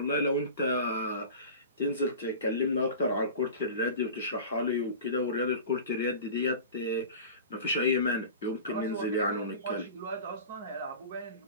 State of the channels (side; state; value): both; inverted; correlation -0.35